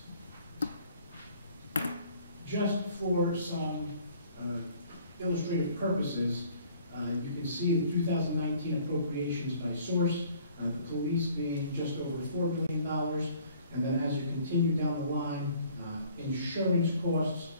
Just for some illustrative purposes, you can see the 2019 appropriations by source, the police being just over $4 million, and then as you continue down the line, insurance costs,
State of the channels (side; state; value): both; inverted; correlation -0.56